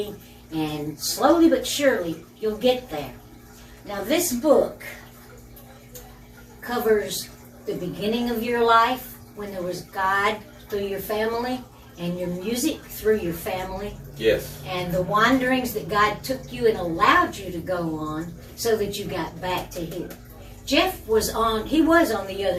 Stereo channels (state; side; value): identical; both; correlation 1.00